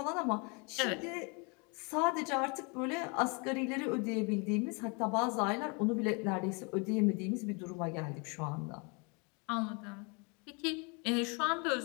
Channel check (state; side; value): quieter; right; 32.5 dB